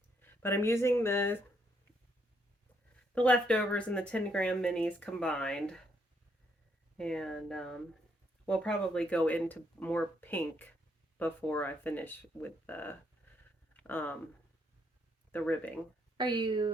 But I'm using the leftovers and the 10-gram minis combined. And we'll probably go into more pink before I finish with the ribbing. Are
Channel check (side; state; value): both; normal; correlation 0.74